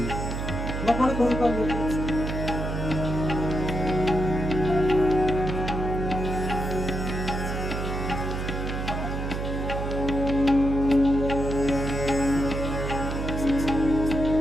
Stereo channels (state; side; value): noise; right; hum, 3 dB below the sound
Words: বাবারে করে পারবো